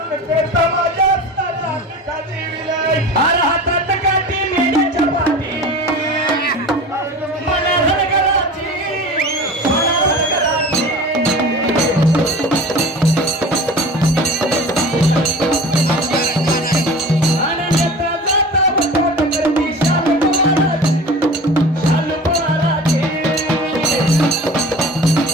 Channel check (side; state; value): both; normal; correlation 0.37